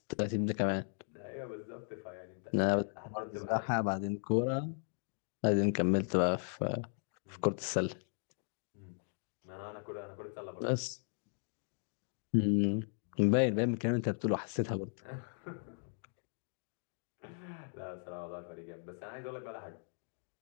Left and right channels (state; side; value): silent; right; 53 dB below the other